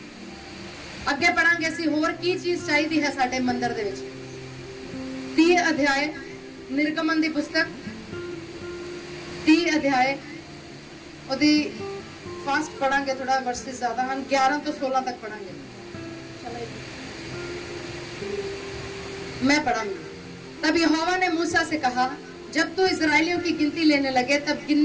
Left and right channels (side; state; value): both; identical; correlation 1.00